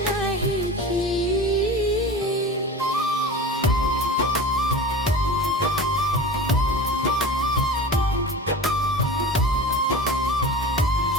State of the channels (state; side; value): normal; both; correlation 0.33